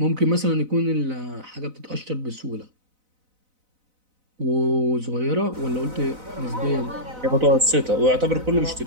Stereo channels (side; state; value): left; late; 4.0 ms